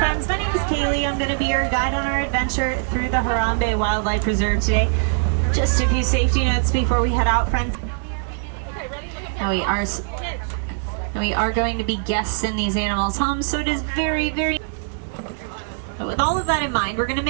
My name is Kaylee. I'm going to be your guide on our adventure through the Harambe Wildlife Reserve today. Just a few safety notes before we head out, friends. Now we are going to be guests in these animals' homes, so it is very, very... But with all of that in mind, we're going to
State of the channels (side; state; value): left; silent; 64 dB below the other